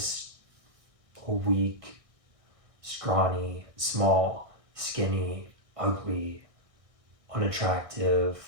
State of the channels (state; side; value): late; left; 1.6 ms